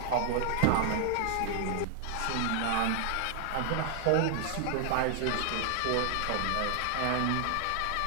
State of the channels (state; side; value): different; both; correlation 0.00